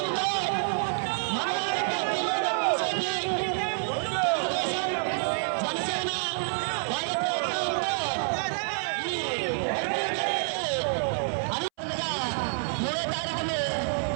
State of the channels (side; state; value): left; silent; 59 dB below the other